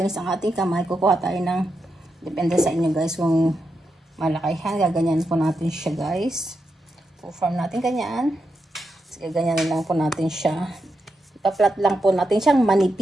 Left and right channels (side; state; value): both; normal; correlation 0.86